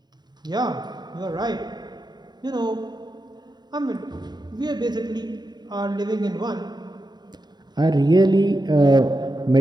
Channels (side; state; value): left; late; 0.20 ms